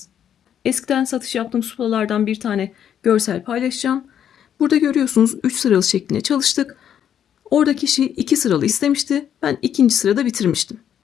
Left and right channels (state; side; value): quieter; right; 9.4 dB